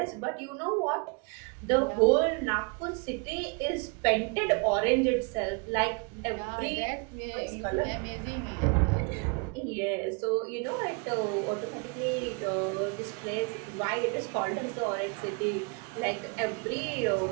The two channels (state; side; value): quieter; left; 33.0 dB